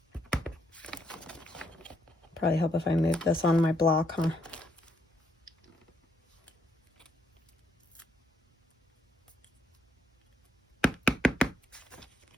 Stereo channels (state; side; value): normal; both; correlation 0.74